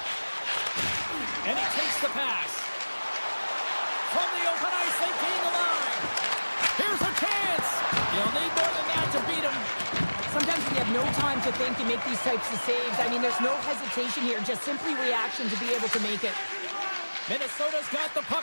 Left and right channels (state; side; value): inverted; both; correlation -1.00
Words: And he takes the pass. From the open ice, they gain the line. Here's a chance. You'll need more than that to beat him. Sometimes when you have no time to think, you make these types of saves. I mean, there's no hesitation here, just simply reaction to be able to make it. Minnesota's got the